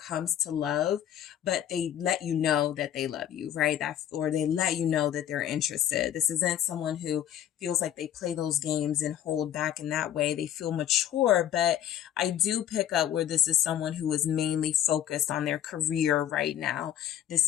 to love, but they let you know that they love you, right? Or they let you know that they're interested. This isn't someone who feels like they play those games and hold back in that way. They feel mature, but I do pick up where this is someone who is mainly focused on their career right now.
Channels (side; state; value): right; quieter; 10.7 dB